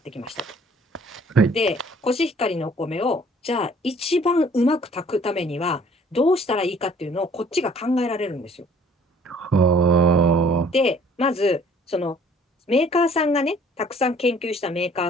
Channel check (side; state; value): both; normal; correlation 0.56